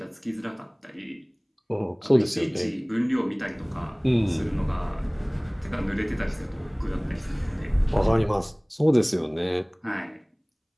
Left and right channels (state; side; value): identical; both; correlation 1.00